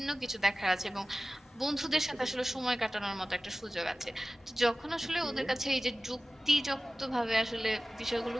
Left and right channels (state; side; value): normal; both; correlation 0.97